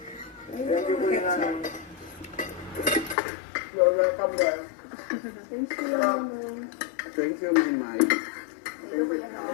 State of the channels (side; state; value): right; drops out; at 3.2 s